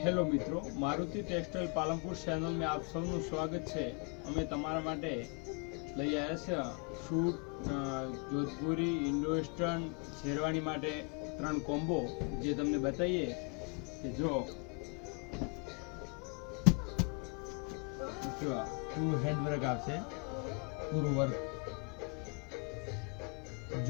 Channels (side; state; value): right; quieter; 36.1 dB